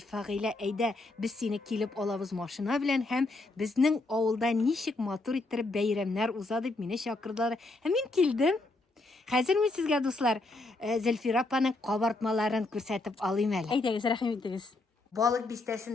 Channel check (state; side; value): quieter; right; 3.0 dB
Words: Фагыйлә, әйдә, без сине килеп алабыз машина белән һәм безнең авылда ничек матур иттереп бәйрәмнәр уза дип мине чакырдылар. Һәм мин килдем. Хәзер мин сезгә, дуслар, Зөлфира апаның кабартмаларын күрсәтеп алыйм әле. Әйдәгез, рәхим итегез. Балык